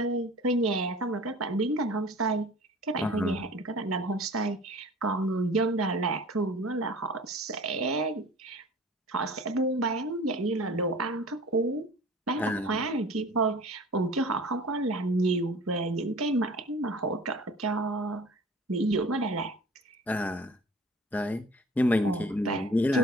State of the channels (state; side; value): normal; both; correlation 0.43